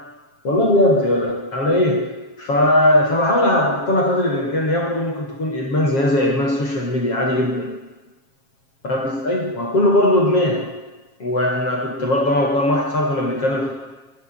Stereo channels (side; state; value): right; late; 7.4 ms